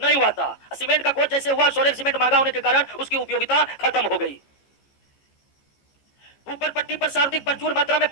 हुआ था। सीमेंट का खोज जैसे हुआ सोरेल सीमेंट महंगा होने के कारण उसकी उपयोगिता खत्म हो गई। ऊपर पट्टी पर सार्वधिक प्रचुर मात्रा में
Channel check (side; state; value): right; late; 15 ms